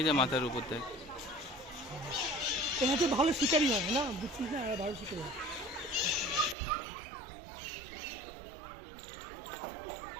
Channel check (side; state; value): left; drops out; at 6.6 s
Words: যে মাথার উপর দেখ। এনাতে ভালো শিকারি হয় না, বুঝছিস না, ভালো শিকারি হয়।